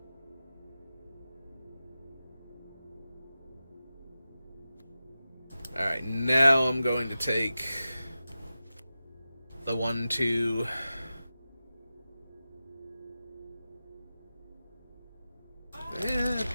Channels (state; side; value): inverted; both; correlation -0.94